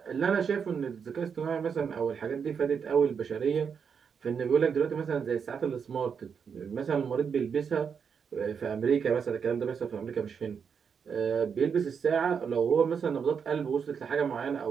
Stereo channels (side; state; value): left; quieter; 6.6 dB